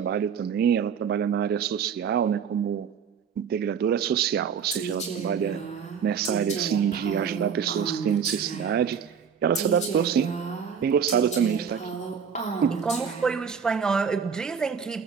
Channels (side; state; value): left; quieter; 7.0 dB